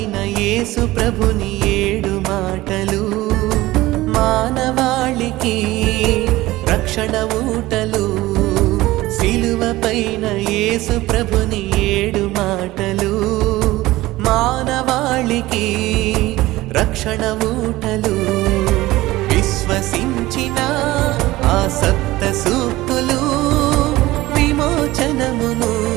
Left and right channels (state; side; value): quieter; left; 18.0 dB